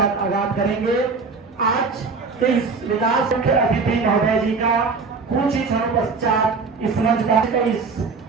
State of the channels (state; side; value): quieter; left; 4.6 dB